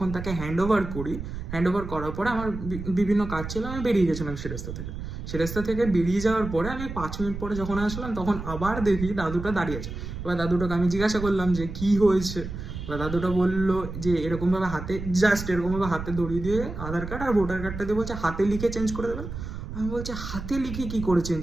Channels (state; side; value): noise; right; rumble, 8 dB below the sound